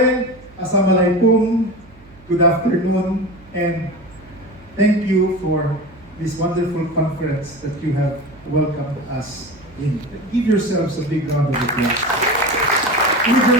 assalamualaikum, good afternoon, and thank you for this wonderful conference that you have welcomed us in. Give yourselves a big round of applause. With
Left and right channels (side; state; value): right; noise; hum, 25 dB below the sound